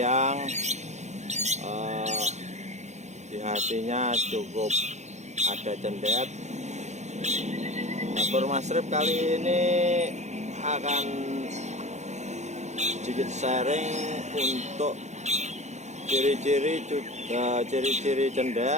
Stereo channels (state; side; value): late; left; 0.33 ms